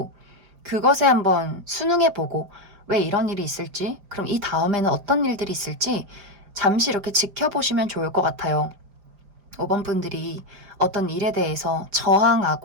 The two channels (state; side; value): late; left; 5.0 ms